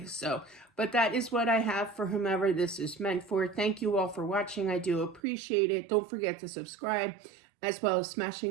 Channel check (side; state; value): left; drops out; at 5.2 s